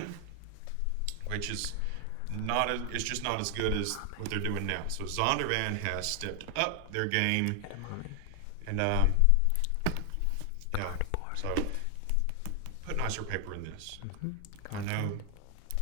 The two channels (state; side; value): different; both; correlation 0.00